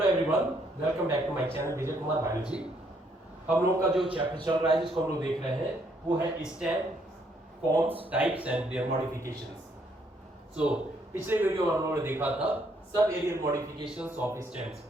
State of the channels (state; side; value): normal; both; correlation 0.70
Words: everyone, welcome back to my channel Vijay Kumar biology. हम लोग का जो चैप्टर चल रहा है जिसको हम लोग देख रहे हैं वो है stem forms, types and their modifications. पिछले वीडियो में हम लोगों ने देखा था sub aerial modifications of stems,